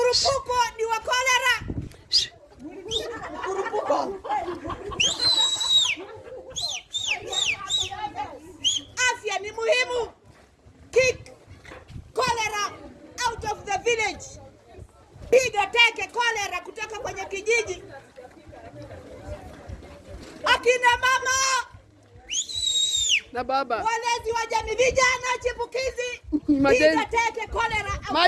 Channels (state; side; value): identical; both; correlation 1.00